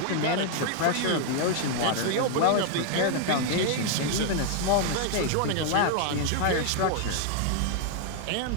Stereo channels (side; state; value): both; different; correlation 0.00